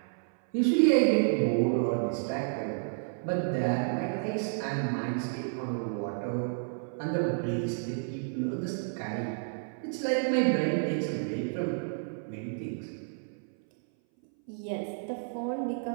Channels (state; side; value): silent; left; 57 dB below the other